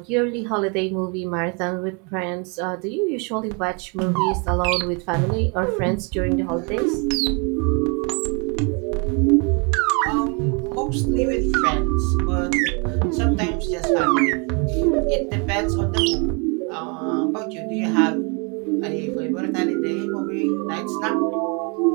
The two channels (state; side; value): quieter; left; 33.7 dB